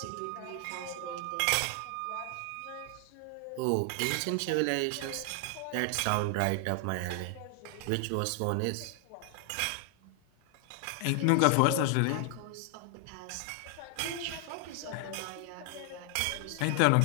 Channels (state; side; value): different; both; correlation 0.00